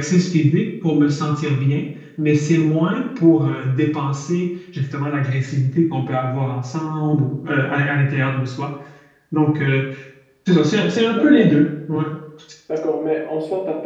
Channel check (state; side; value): identical; both; correlation 1.00